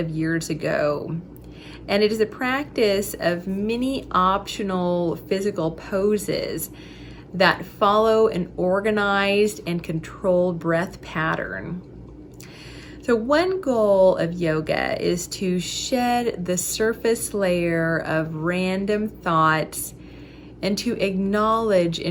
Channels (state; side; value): identical; both; correlation 1.00